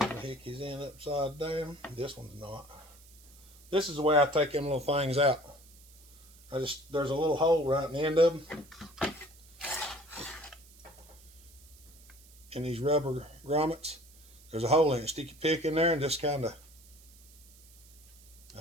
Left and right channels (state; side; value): noise; right; hiss, 23 dB below the sound